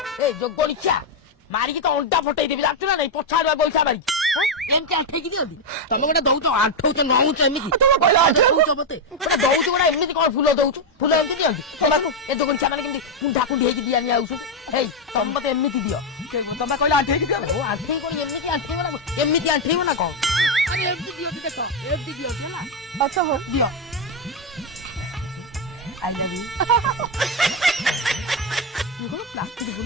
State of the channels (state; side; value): normal; both; correlation 0.04